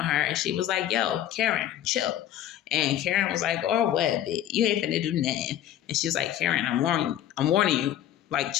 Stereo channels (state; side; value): quieter; right; 11.8 dB